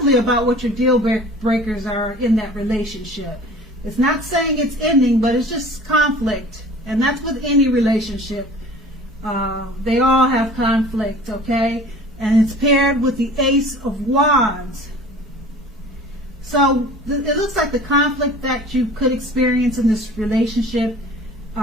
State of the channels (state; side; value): normal; both; correlation 0.44